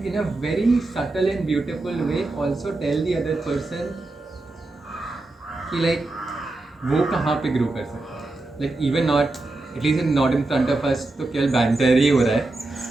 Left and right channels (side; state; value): left; quieter; 3.0 dB